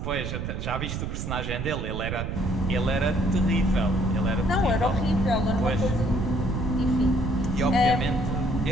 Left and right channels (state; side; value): noise; right; rumble, 4 dB below the sound